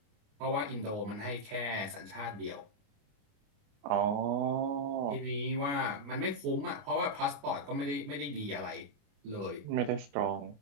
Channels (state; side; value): late; left; 28 ms